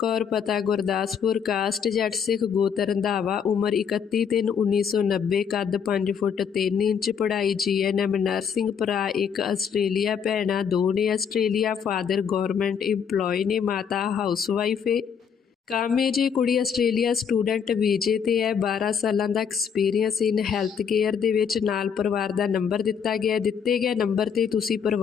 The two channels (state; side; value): quieter; right; 7.1 dB